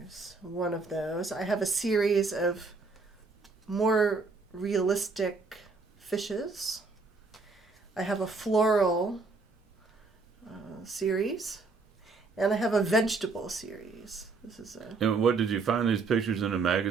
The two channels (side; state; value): left; quieter; 4.1 dB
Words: one of those. I have a series of more realistic fishes. I have a floral series. And I have a vegetable series. This is a... And what, did you find these pictures in a